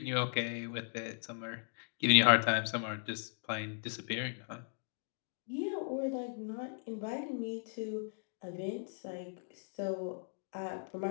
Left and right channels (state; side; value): silent; right; digital silence